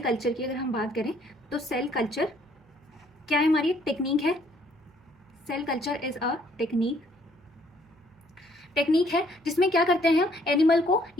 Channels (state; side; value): noise; right; hum, 30 dB below the sound